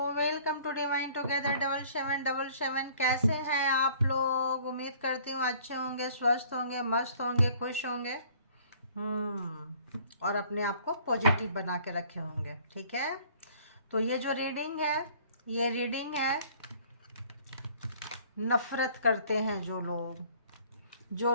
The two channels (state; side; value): inverted; both; correlation -0.54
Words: welcome to divine together 7777। कैसे हैं आप लोग? उम्मीद करती हूँ अच्छे होंगे, स्वस्थ होंगे, मस्त होंगे, खुश होंगे। और अपने आप को पॉजिटिव बना के रखे होंगे। ठीक है, तो ये जो रीडिंग है, ये रीडिंग है नफरत करते हैं जो